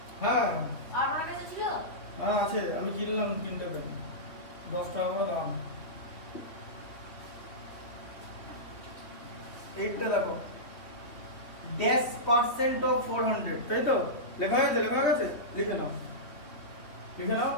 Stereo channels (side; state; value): right; late; 3.3 ms